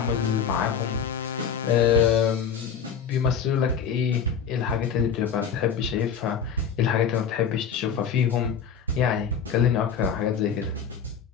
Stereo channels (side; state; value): right; quieter; 7.1 dB